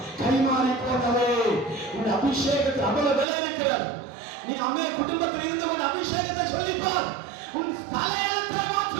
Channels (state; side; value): drops out; left; at 3.2 s